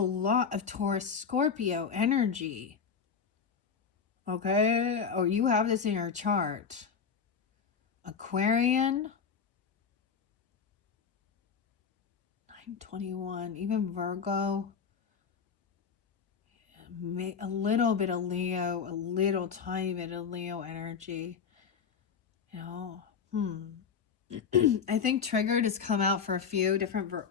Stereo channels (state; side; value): quieter; right; 6.3 dB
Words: of Taurus Scorpio energy. Okay? Or you have this in your chart. Aquarian. 921. Even Virgo. A little bit of Leo. A little tiny bit of Leo energy. You know? I think triggered has come out for a few different,